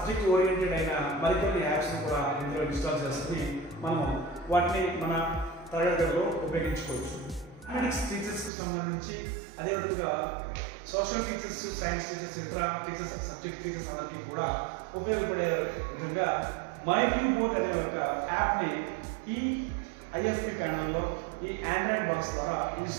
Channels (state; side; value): drops out; left; at 8.5 s